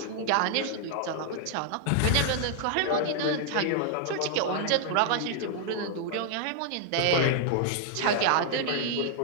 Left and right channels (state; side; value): different; both; correlation 0.00